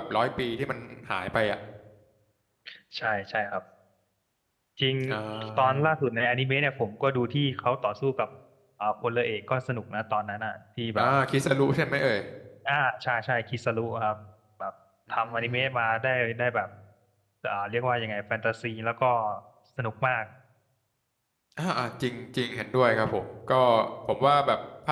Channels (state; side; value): identical; both; correlation 1.00